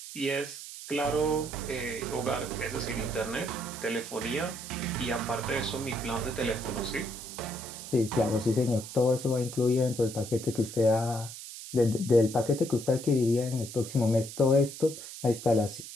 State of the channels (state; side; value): noise; right; hiss, 11 dB below the sound